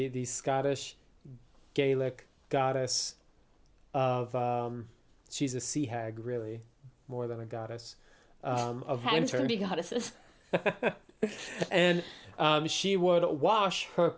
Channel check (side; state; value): both; identical; correlation 1.00